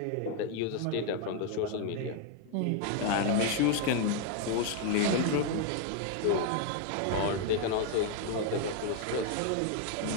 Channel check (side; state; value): both; different; correlation 0.00